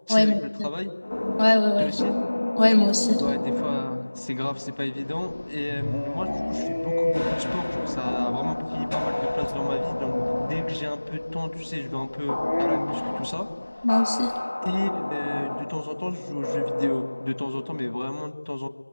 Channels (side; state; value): both; inverted; correlation -1.00